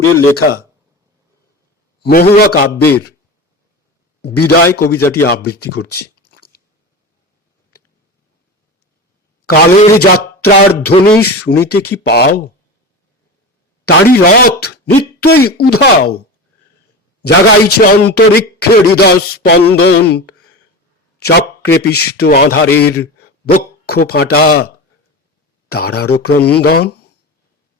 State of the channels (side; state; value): both; normal; correlation 0.27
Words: লেখা মহুয়া কাব্যের বিদায় কবিতাটি আবৃত্তি করছি। কালের যাত্রার ধ্বনি শুনিতে কি পাও? তারি রথ নিত্যই উধাও, জাগাইছে অন্তরিক্ষে হৃদয় স্পন্দন, চক্রে পিষ্ট আধারের বক্ষ ফাটা তারারও ক্রন্দন।